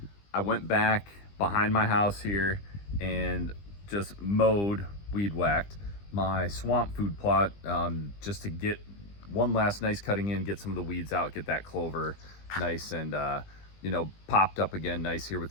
I went back behind my house here and just mowed, weed whacked my swamp food plot, just to get one last nice cutting in, get some of the weeds out, get that clover nice and popped up again nice here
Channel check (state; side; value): late; right; 20 ms